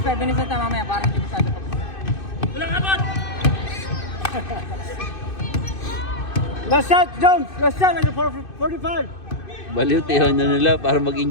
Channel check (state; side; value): late; right; 2.6 ms